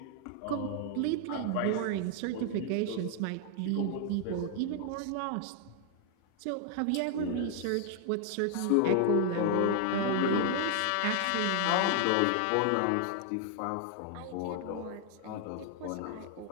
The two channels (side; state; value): both; different; correlation 0.00